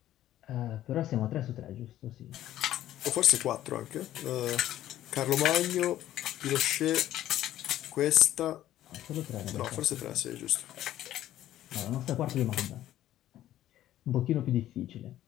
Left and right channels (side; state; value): right; quieter; 13.1 dB